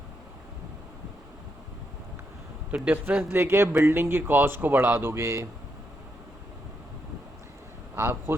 तो डिफरेंस लेके बिल्डिंग की कॉस्ट को बढ़ा दोगे। आप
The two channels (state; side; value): normal; both; correlation 0.81